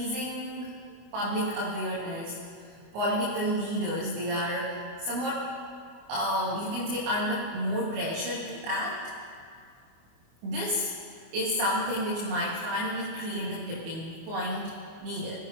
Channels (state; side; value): late; left; 24 ms